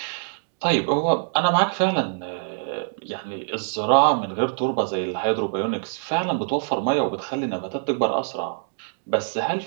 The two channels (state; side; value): silent; left; digital silence